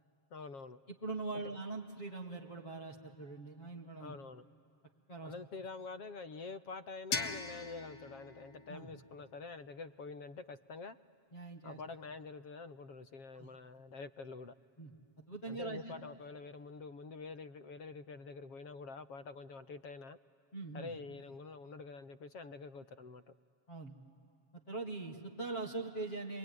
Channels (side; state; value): right; late; 7.4 ms